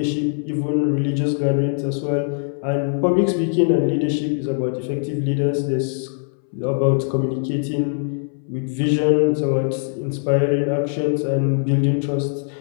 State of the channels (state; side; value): silent; right; 63 dB below the other